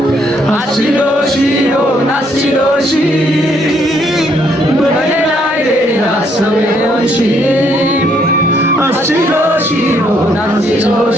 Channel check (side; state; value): both; normal; correlation 0.70